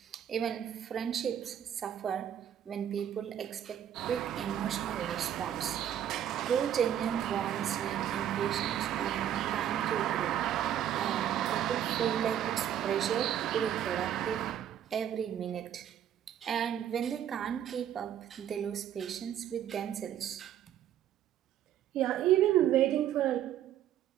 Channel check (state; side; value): quieter; left; 10.4 dB